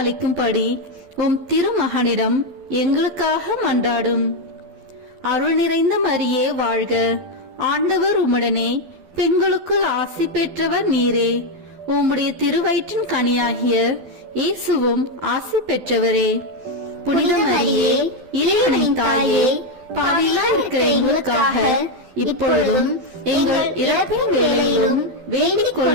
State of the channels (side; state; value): left; late; 12 ms